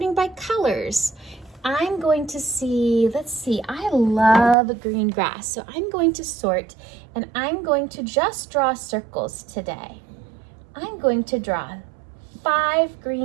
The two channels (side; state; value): left; drops out; at 4.5 s